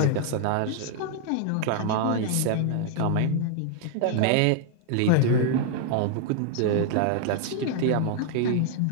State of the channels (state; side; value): different; both; correlation 0.00